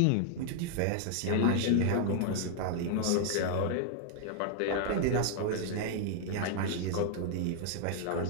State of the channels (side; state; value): both; different; correlation 0.00